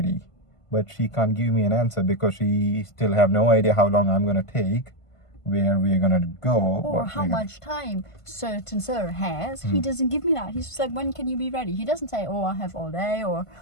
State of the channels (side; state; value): right; late; 1.5 ms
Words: But she can't give me an answer because she still have no idea how long I'm gonna take, where we're gonna go, or how much time certain sir has. He doesn't give me that. He's just like, when can you be ready? He doesn't say, oh, I have all day, or